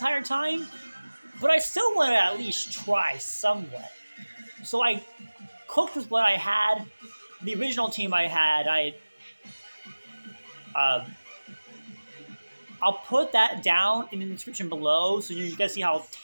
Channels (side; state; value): both; inverted; correlation -1.00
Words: time, but I still want to at least try somewhat. So I cooked with what I had. The original team I had, I'll put that down in the description below so you guys see how